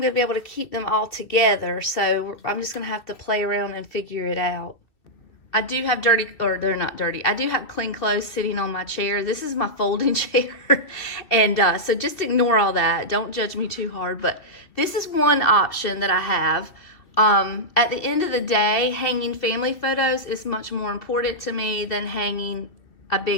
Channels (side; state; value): right; late; 2.4 ms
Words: to be able to keep them all together. So I'm just going to have to play around and figure it out. I do have dirty, or they're not dirty. I do have clean clothes sitting on my chair. This is my folding chair. And so just ignore all that. Don't judge me too hard. But this is one option that I have. At the end of the day, hanging family photos is much more important to me than hanging a